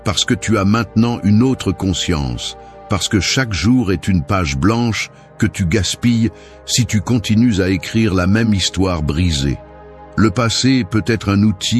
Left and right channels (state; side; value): identical; both; correlation 1.00